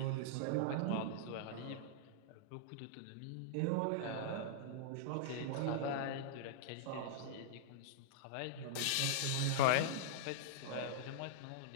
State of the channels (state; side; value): different; both; correlation -0.02